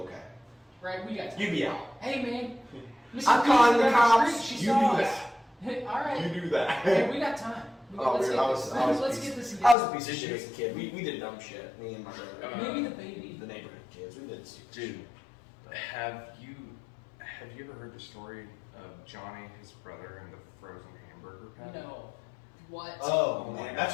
Right, we got time. You'd be out. Hey, man. Mrs. I'm calling the Peterson down cops. street, she You saw do us. that. All right. You do that. Hey, we got time. Oh, Let's dude, get I was this- a let's piece- get this I was a together. piece of shit as a kid. We did dumb shit. Me and my brother. Maybe the baby. The neighborhood kids. We did stupid shit. Dude, have you ever heard the story of Johnny, his brother, and the frozen hamburger patty? No. What? Oh man, that's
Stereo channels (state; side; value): drops out; right; at 9.8 s